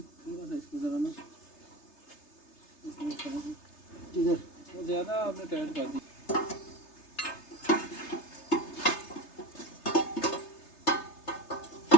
सा इसको जरा ना इधर वो ज़्यादा आपने टाइट कर दी।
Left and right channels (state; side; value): late; right; 3.3 ms